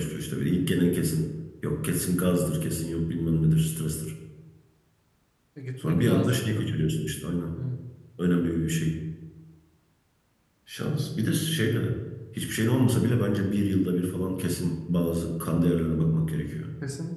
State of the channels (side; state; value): both; identical; correlation 1.00